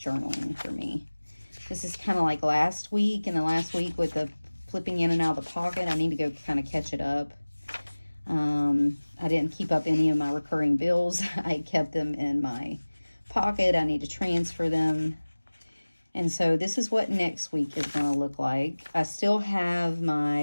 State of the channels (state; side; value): inverted; both; correlation -1.00